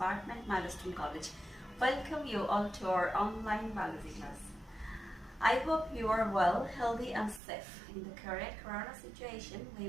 Milestone College. Welcome you all to our online biology class. I hope you are well, healthy and safe. In the current corona situation,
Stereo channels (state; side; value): drops out; left; at 7.4 s